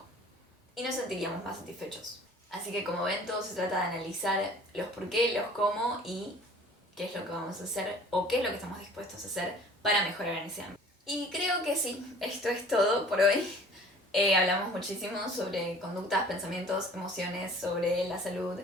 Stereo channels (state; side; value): normal; both; correlation 0.49